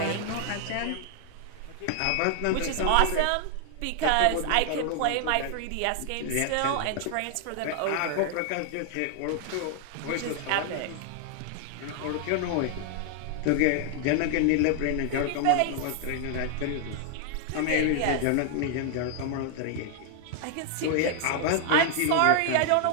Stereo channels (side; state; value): both; different; correlation 0.00